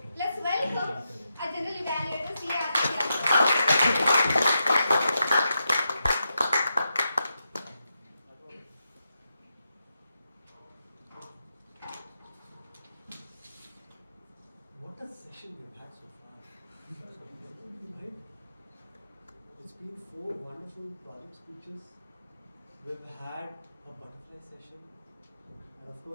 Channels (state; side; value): inverted; both; correlation -0.86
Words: let's welcome our general evaluator, SICASA. What a session we've had so far. Right? It's been 4 wonderful project speeches. We've had a butterfly session. And of